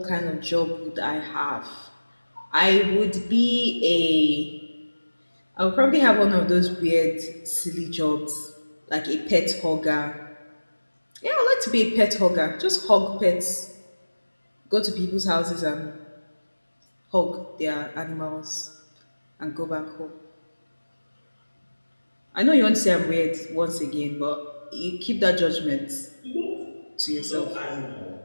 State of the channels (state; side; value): inverted; both; correlation -1.00